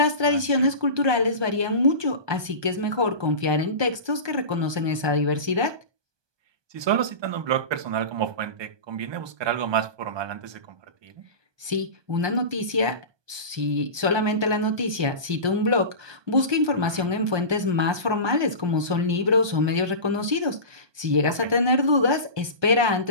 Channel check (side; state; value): left; late; 1.2 ms